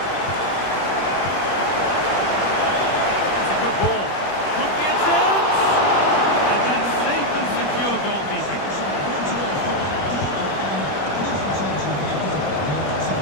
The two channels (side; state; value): right; late; 21 ms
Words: That's a good ball. Could be a chance. And that's safe and secure goalkeeping.